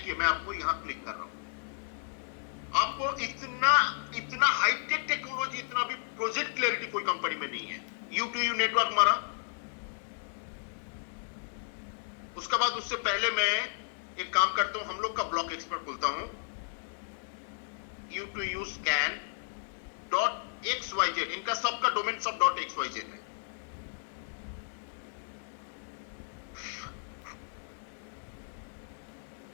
मैं आपको यहां क्लिक कर रहा हूं। आपको इतना हाईटेक टेक्नोलॉजी, इतना भी प्रोजेक्ट क्लैरिटी कोई कंपनी में नहीं है। U2U नेटवर्क मारा, उसके बाद उससे पहले मैं एक काम करता हूं, हम लोग का ब्लॉक एक्सपर्ट खोलता हूं, U2U scan.xyz, इनका सबका डोमेन सब .xyz है।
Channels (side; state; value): right; silent; digital silence